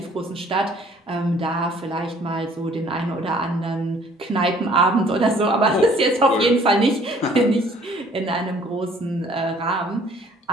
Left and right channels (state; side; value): normal; both; correlation 0.57